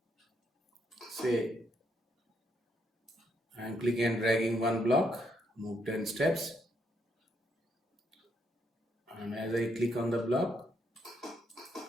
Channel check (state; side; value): normal; both; correlation 0.76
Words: say I am clicking and dragging one block, move 10 steps, and as I click on the block,